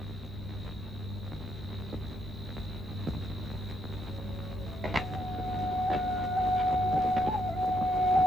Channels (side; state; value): left; noise; rumble, 15 dB below the sound